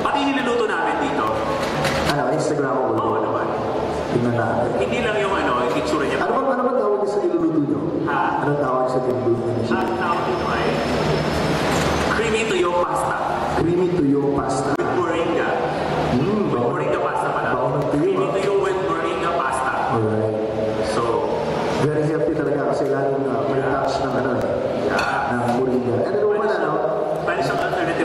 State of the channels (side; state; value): both; identical; correlation 1.00